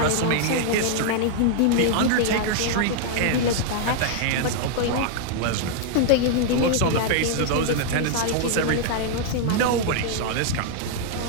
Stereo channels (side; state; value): both; different; correlation 0.00